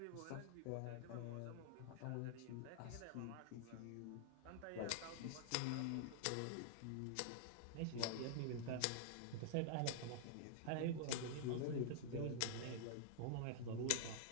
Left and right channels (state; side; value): different; both; correlation -0.01